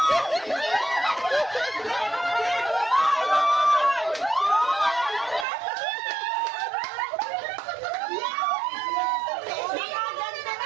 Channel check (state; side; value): drops out; left; at 5.5 s